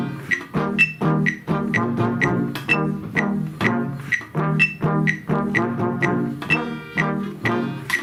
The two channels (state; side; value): identical; both; correlation 1.00